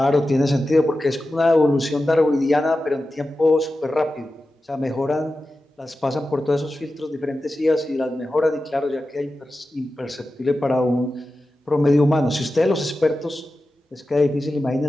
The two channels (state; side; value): normal; both; correlation 0.93